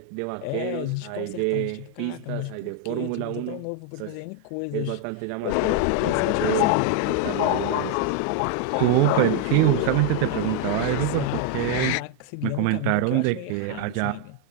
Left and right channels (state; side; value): different; both; correlation 0.00